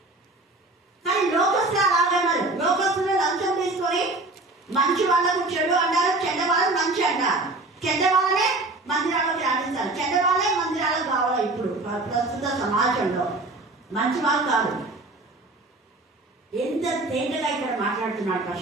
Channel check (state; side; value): quieter; left; 3.0 dB